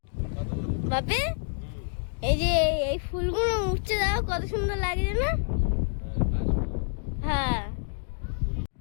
বাপে এই যে এই ফুলগুলো উঠছে, দাও কত সুন্দর লাগছে না? হ্যাঁ,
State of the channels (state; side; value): silent; right; digital silence